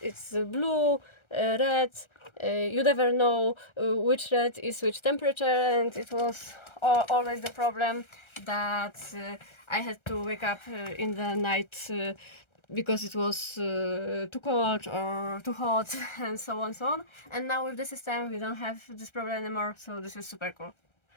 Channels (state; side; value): late; right; 1.3 ms